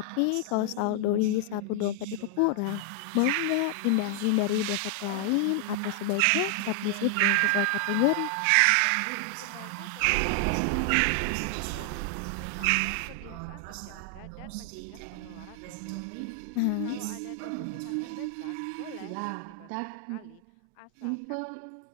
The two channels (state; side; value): different; both; correlation 0.00